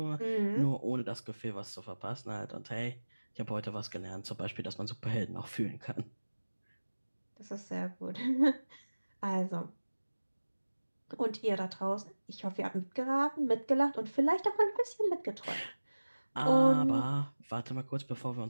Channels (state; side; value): inverted; both; correlation -1.00